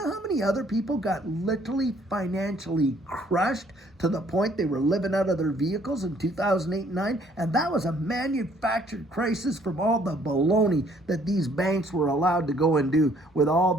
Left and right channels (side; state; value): both; normal; correlation 0.62